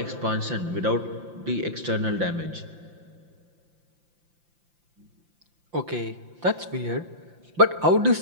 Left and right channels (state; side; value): late; left; 5.8 ms